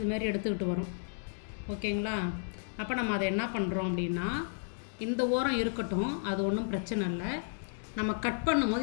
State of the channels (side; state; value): right; silent; digital silence